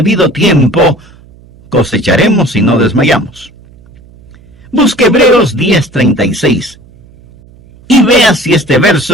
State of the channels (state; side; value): noise; right; hum, 26 dB below the sound